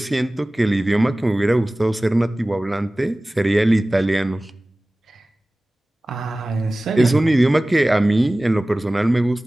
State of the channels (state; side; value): normal; both; correlation 0.98